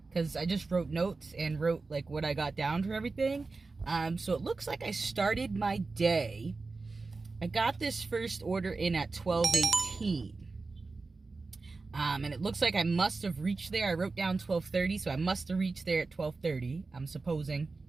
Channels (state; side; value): quieter; left; 3.9 dB